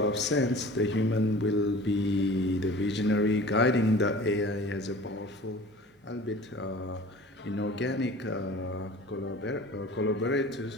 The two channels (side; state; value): both; normal; correlation 0.43